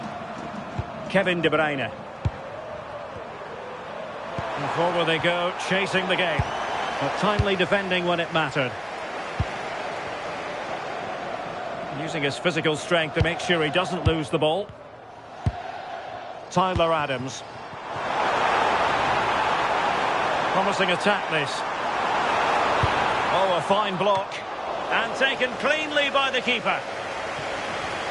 Kevin De Bruyne. And forward they go, chasing the game. But timely defending when it mattered. Using his physical strength to make sure he doesn't lose the ball. Tyler Adams. Promising attack this. Oh, a fine block. And taken cleanly by the keeper.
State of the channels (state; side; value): identical; both; correlation 1.00